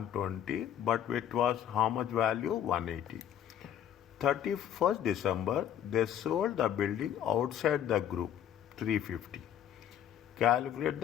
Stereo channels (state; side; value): quieter; right; 10.0 dB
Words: but it was how much value? 180. 31st December, they sold the building outside the group, 350. Calculate